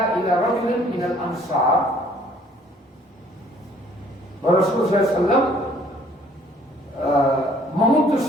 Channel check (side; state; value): both; normal; correlation 0.59